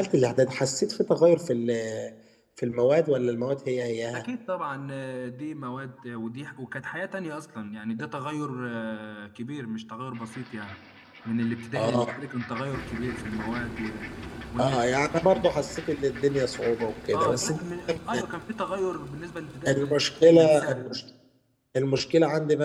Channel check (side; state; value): both; identical; correlation 1.00